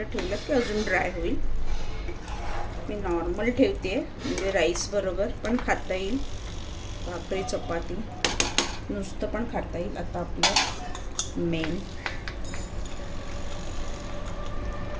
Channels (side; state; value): both; identical; correlation 1.00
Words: ठेवलं की अजून ड्राय होईल. मी नॉर्मल ठेवते म्हणजे राईस बरोबर पण खाता येईल. भाकरी चपाती नुसतं पण खाता येईल. आता आपलं मेन